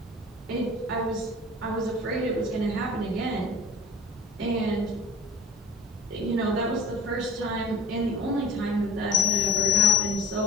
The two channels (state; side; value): normal; both; correlation 0.42